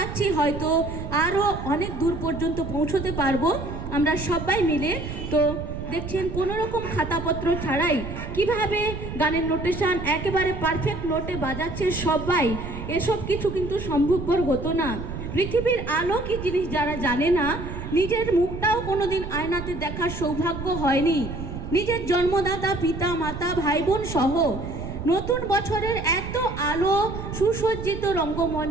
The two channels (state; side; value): noise; right; rumble, 8 dB below the sound